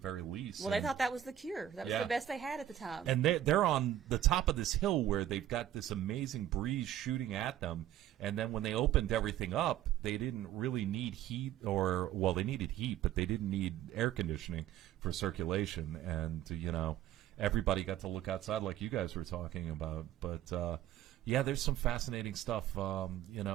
least. Well, they thought that was the cure. That was the best they had at the time. And they're on the top of this hill where they've got this amazing breeze shooting at them. And then when they opened everything up, they didn't really need heat they needed heat, but they didn't need air conditioning for circulation. And, everybody got to look outside like you guys were talking about. But, yeah, there's some fascinating stuff.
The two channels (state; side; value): quieter; left; 11.8 dB